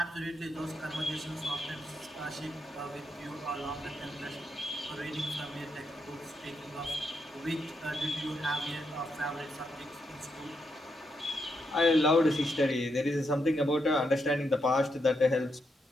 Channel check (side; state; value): both; normal; correlation 0.81